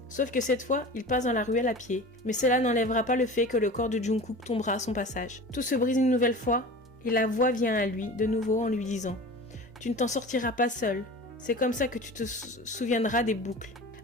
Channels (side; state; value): both; normal; correlation 0.36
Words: sauf que cette fois, il passe dans la ruelle à pied. Mais cela n'enlèvera pas le fait que le corps de Jungkook tombera à son passage. Tout se brise une nouvelle fois, et la voix vient à lui, de nouveau en lui disant « Tu ne t'en sortiras pas seul. C'est comme ça que tu te souviendras des boucles.